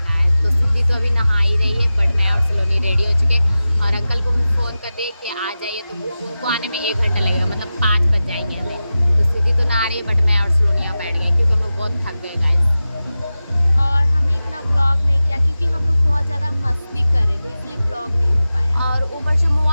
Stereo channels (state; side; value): inverted; both; correlation -0.94